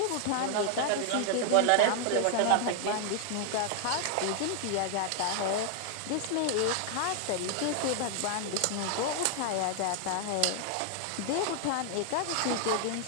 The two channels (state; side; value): different; both; correlation 0.00